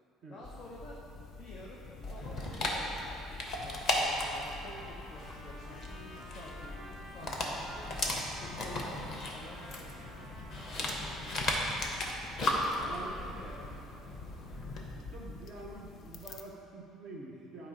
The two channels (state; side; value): normal; both; correlation 0.57